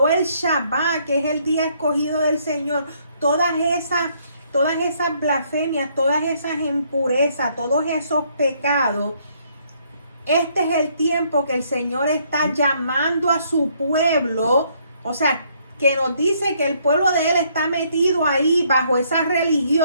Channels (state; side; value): inverted; both; correlation -0.68